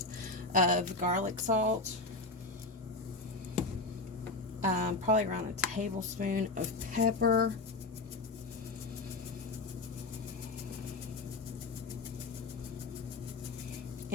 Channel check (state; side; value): quieter; right; 3.3 dB